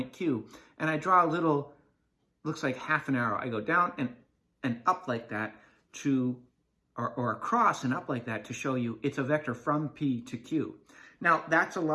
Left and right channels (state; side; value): identical; both; correlation 1.00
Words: Q. And I draw a little, looks like half an arrow. I go down and up like that or across and up like that to show you it's a vector from P to Q. Now, that's a